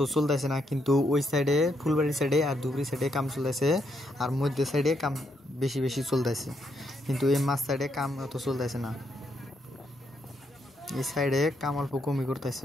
চলতেছে না, কিন্তু ওই সাইডে ফুলবাড়ি সাইডে আর ধুবড়ী সাইডে কাম চলতেছে, আর মধ্য সাইডে কাম বেশি বেশি চলতেছে, কিন্তু এই মাঝ সাইডে কাম অত চলতেছে না। এই সাইডে কাম অল্প কমই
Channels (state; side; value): normal; both; correlation 0.77